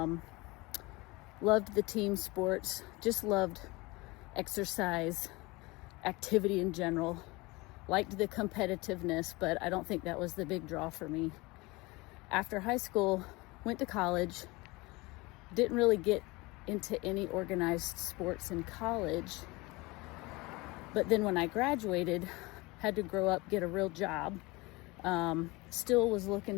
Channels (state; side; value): quieter; right; 23.5 dB